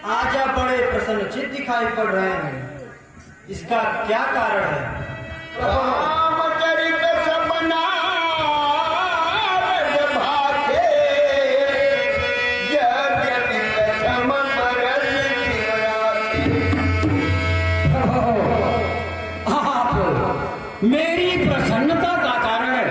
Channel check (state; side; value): identical; both; correlation 1.00